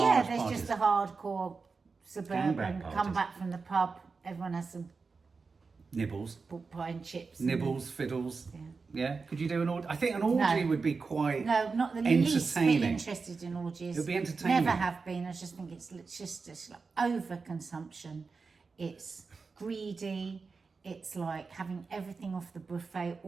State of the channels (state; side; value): quieter; left; 4.6 dB